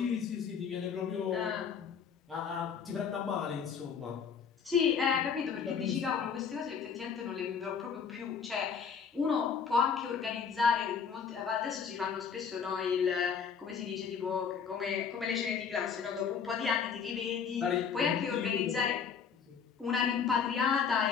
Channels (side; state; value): right; quieter; 6.6 dB